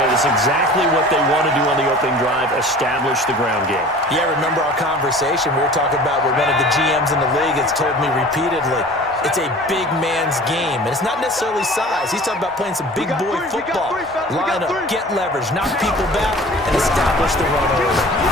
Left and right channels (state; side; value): normal; both; correlation 0.43